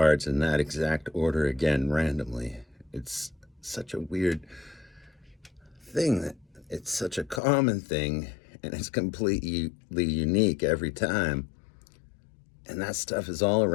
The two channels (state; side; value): drops out; right; at 7.4 s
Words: in that exact order again randomly. It's such a weird thing that it's such a common thing and it's completely unique every time. And that stuff is all